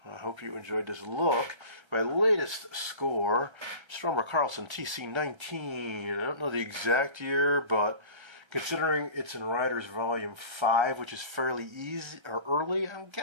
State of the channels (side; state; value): left; late; 1.3 ms